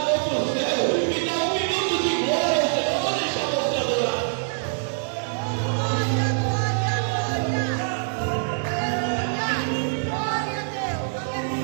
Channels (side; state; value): left; silent; digital silence